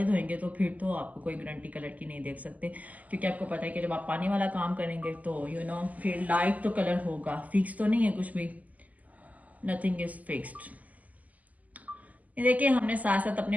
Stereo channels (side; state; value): left; late; 0.077 ms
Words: धोएंगे तो फिर तो आपको कोई गारंटी कलर की नहीं देख सकते, क्योंकि आपको पता है कि जब आप पानी वाला काम करेंगे तो फिर लाइट तो कलर होगा, फिक्स तो नहीं है कुछ भी, नथिंग इज फिक्स्ड। ये देखिए हमने साथ साथ